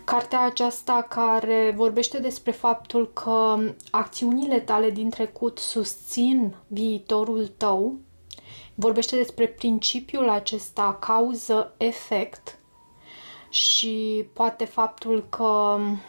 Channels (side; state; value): both; inverted; correlation -1.00